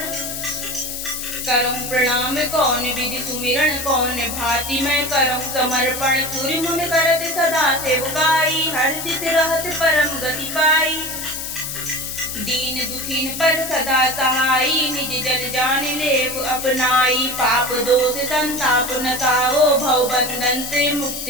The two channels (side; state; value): left; noise; hiss, 6 dB below the sound